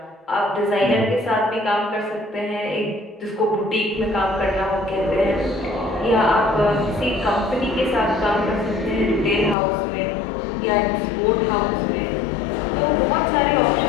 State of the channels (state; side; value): drops out; right; at 9.6 s